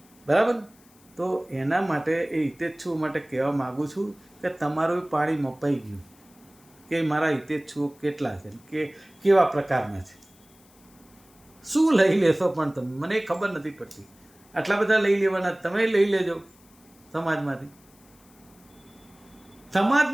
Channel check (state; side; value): noise; left; hiss, 28 dB below the sound